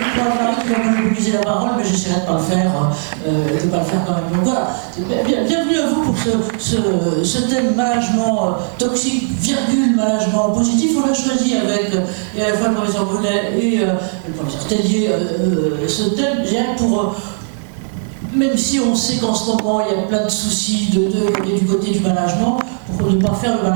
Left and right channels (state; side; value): silent; left; digital silence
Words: qui va monopoliser la parole, mais j'essaierai de ne pas le faire, quand même. Donc voilà, bienvenue à vous pour ce thème management toxique, management positif. On l'a choisi avec à la fois le professeur Brunet et le professeur Tellier, ce thème, pour même si on sait qu'en ce moment il y a plein de soucis du côté du management, pour ne pas faire le